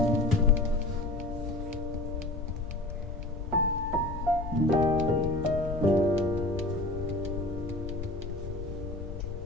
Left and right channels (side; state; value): left; noise; rumble, 7 dB below the sound